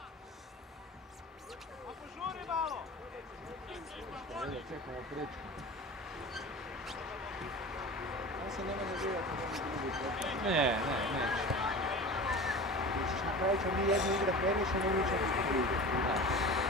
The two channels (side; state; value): both; normal; correlation 0.34